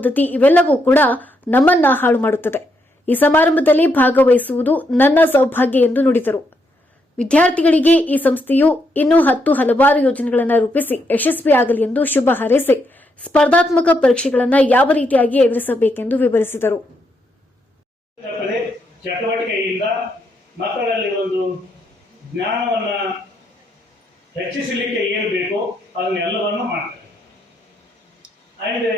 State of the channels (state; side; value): normal; both; correlation 0.78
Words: ಇವೆಲ್ಲವೂ ಕೂಡ ನಮ್ಮನ್ನ ಹಾಳು ಮಾಡುತ್ತದೆ. ಈ ಸಮಾರಂಭದಲ್ಲಿ ಭಾಗವಹಿಸುವುದು ನನ್ನ ಸೌಭಾಗ್ಯ ಎಂದು ನುಡಿದರು. ವಿದ್ಯಾರ್ಥಿಗಳಿಗೆ ಈ ಸಂಸ್ಥೆಯು ಇನ್ನೂ ಹಲವಾರು ಯೋಜನೆಗಳನ್ನು ರೂಪಿಸಿ ಯಶಸ್ವಿಯಾಗಲಿ ಎಂದು ಶುಭ ಹಾರೈಸಿ ಸ್ಪರ್ಧಾತ್ಮಕ ಪರೀಕ್ಷೆಗಳನ್ನು ಯಾವ ರೀತಿಯಾಗಿ ಎದುರಿಸಬೇಕೆಂದು ವಿವರಿಸಿದರು. ಚಟುವಟಿಕೆಯಿಂದ ಮಕ್ಕಳಲ್ಲಿ ಒಂದು ಜ್ಞಾನವನ್ನು ಹೆಚ್ಚಿಸಲಿಕ್ಕೆ ಏನು ಬೇಕೋ ಅದನ್ನೆಲ್ಲವನ್ನು ಮಾಡ್ತಾರೆ. ಅಂದರೆ